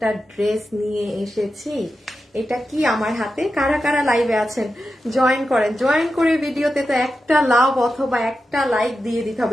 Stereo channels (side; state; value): both; normal; correlation 0.90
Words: ড্রেস নিয়ে এসেছি। এটা কি আমার হাতে? কারা কারা লাইভে আছেন জয়েন করেন, জয়েন করে ভিডিওতে তো একটা লাভ অথবা একটা লাইক দিয়ে দিতে